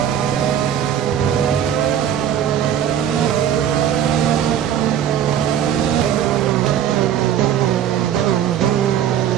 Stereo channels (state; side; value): quieter; left; 9.7 dB